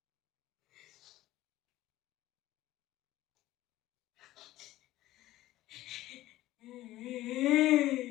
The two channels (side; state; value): right; quieter; 15.8 dB